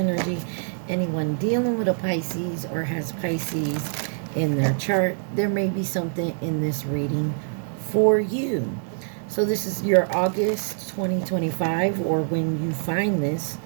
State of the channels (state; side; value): silent; left; 62 dB below the other